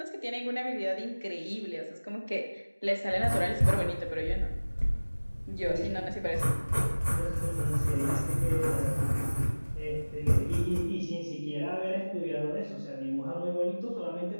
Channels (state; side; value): inverted; both; correlation -1.00